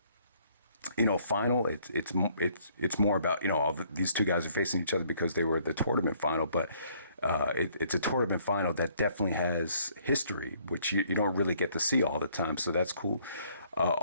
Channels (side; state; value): both; inverted; correlation -0.64